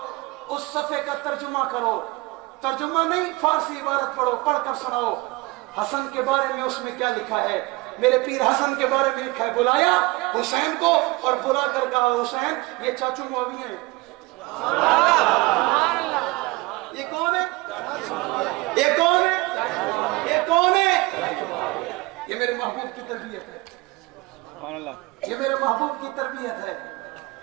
उस सफे का तर्जुमा करो, तर्जुमा नहीं फारसी इबारत पढ़ो, पढ़कर सुनाओ हसन के बारे में उसमें क्या लिखा है। میرے پیر حسن کے بارے میں لکھا ہے، بلایا حسین کو اور بلا کر کہا حسین یہ چاچو معاویہ ہیں۔ یہ کون ہے؟ یہ کون ہے؟ یہ کون ہے؟ یہ میرے محبوب کی تربیت ہے، یہ میرے محبوب کی تربیت ہے۔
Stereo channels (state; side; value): quieter; left; 22.8 dB